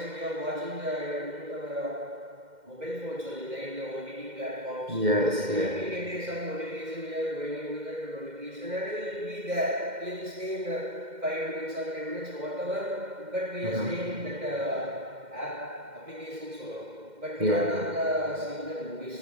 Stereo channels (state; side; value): late; left; 2.1 ms